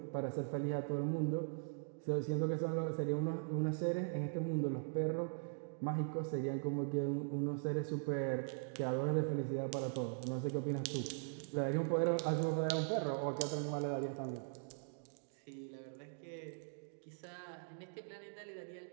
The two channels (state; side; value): silent; left; digital silence